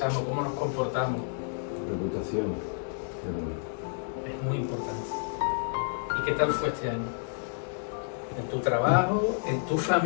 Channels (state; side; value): silent; right; digital silence